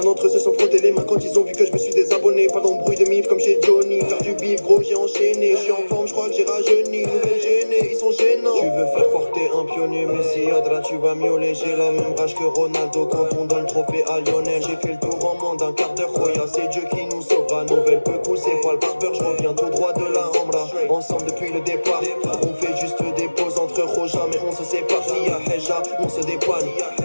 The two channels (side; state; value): both; inverted; correlation -1.00